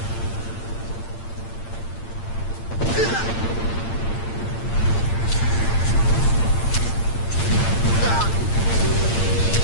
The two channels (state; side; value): late; right; 8.8 ms